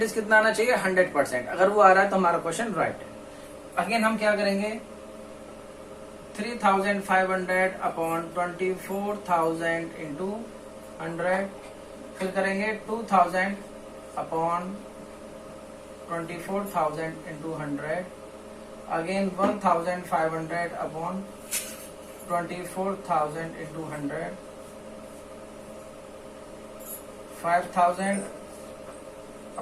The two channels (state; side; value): identical; both; correlation 1.00